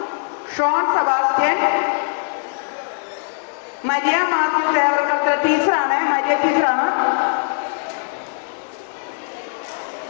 Sean Sebastian, Maria Mathew ടീച്ചറാണ്, മരിയ ടീച്ചറാണ്.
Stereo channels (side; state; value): right; silent; digital silence